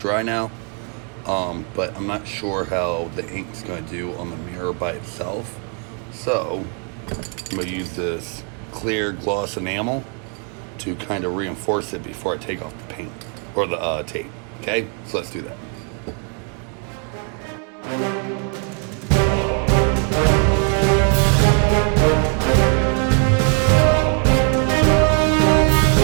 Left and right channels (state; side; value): quieter; left; 39.9 dB